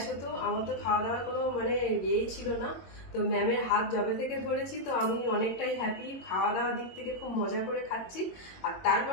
হতো, আমার তো খাওয়া দাওয়ার কোনো মানে ইয়েই ছিল না। তো ম্যামের হাত জবে থেকে ধরেছি, তো আমি অনেকটাই হ্যাপি। খাওয়া দাওয়ার দিক থেকে খুব মজা করে খাচ্ছি। আর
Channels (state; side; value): late; right; 22 ms